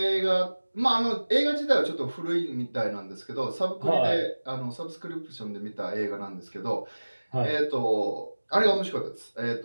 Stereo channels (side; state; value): both; inverted; correlation -1.00